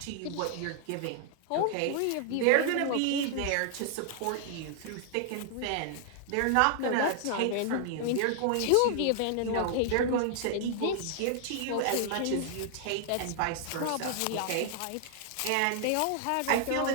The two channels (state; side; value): different; both; correlation -0.01